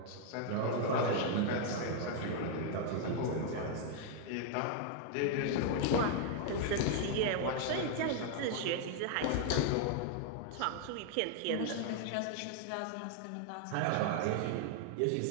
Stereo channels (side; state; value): both; different; correlation 0.00